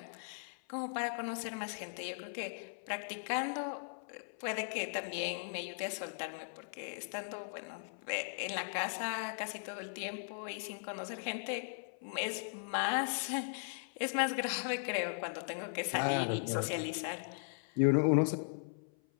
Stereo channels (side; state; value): right; silent; 52 dB below the other